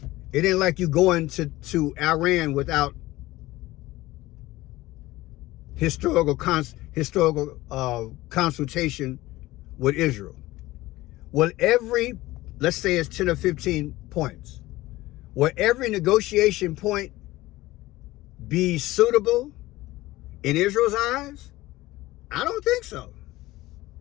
It ain't like you going to Iran without historical consultation with Israel. Well, let's say it's 10 or 15 points. Will every negotiation point be suitable in Israel's eyes? I don't think so.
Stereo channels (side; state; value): right; quieter; 18.1 dB